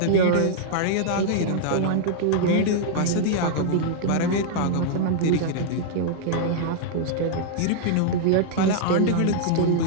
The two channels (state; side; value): different; both; correlation -0.01